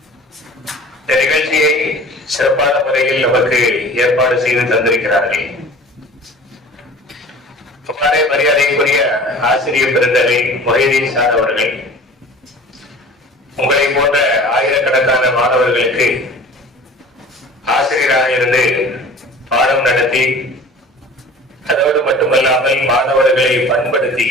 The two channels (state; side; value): normal; both; correlation 0.43